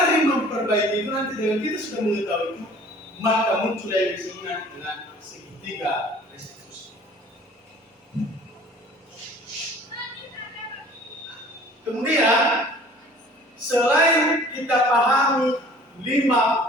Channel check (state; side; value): normal; both; correlation 0.50